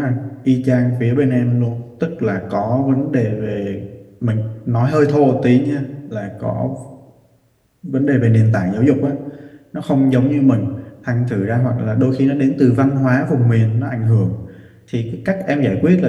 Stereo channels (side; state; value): both; identical; correlation 1.00